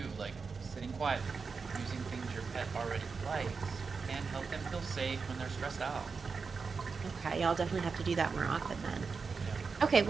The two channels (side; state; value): left; quieter; 5.0 dB